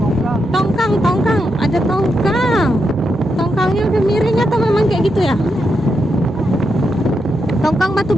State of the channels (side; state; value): both; normal; correlation 0.84